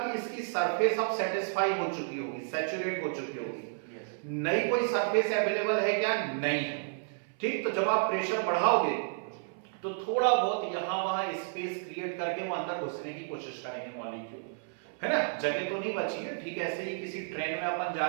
इसकी सरफेस अब सेटिस्फाई हो चुकी होगी, सैचुरेट हो चुकी होगी, नई कोई सरफेस अवेलेबल है क्या, नहीं है। ठीक, तो जब आप प्रेशर बढ़ाओगे तो थोड़ा बहुत यहां वहां स्पेस क्रिएट करके वो अंदर घुसने की कोशिश करेंगे मॉलिक्यूल, है ना, जगह तो नहीं बची है। ठीक, ऐसे ही किसी ट्रेन में अपन जा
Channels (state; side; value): silent; left; 57 dB below the other